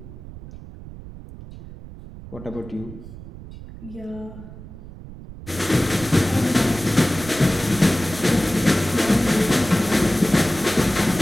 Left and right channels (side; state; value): right; noise; rumble, 15 dB below the sound